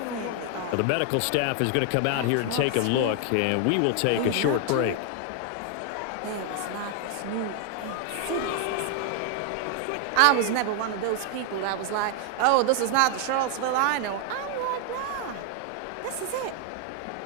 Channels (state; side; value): different; both; correlation 0.00